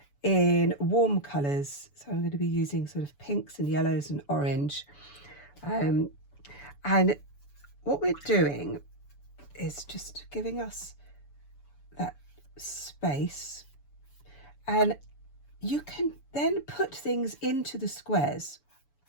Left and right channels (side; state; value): right; late; 7.0 ms